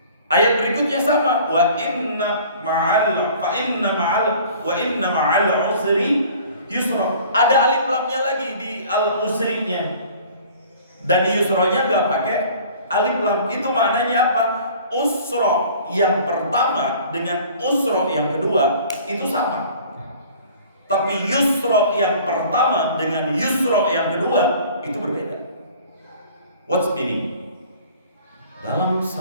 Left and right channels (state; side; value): inverted; both; correlation -0.49